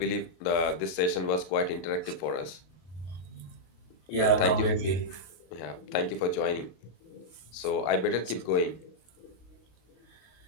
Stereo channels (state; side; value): late; right; 33 ms